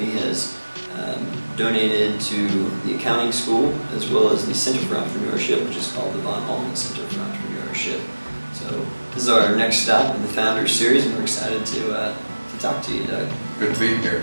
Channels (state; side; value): inverted; both; correlation -1.00